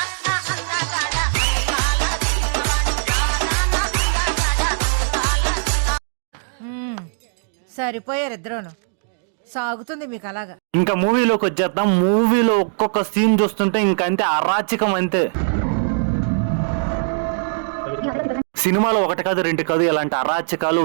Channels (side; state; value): left; silent; digital silence